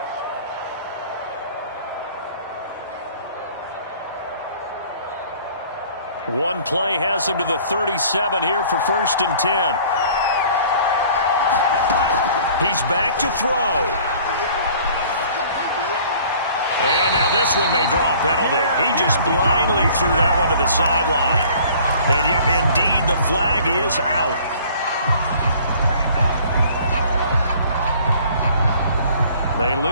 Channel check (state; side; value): inverted; both; correlation -0.52